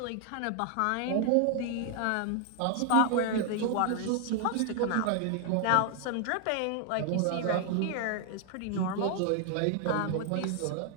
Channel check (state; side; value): different; both; correlation 0.00